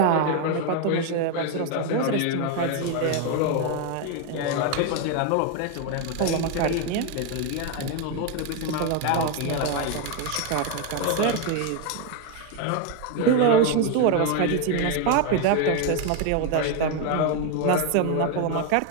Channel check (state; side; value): different; both; correlation 0.01